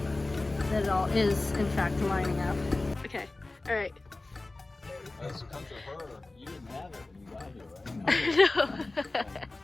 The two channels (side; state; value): right; quieter; 3.1 dB